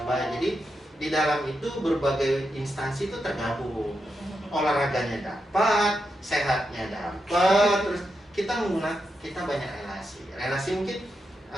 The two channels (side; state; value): both; normal; correlation 0.86